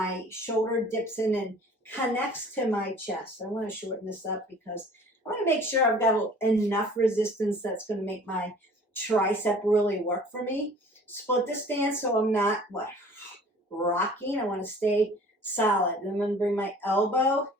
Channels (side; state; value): both; normal; correlation 0.49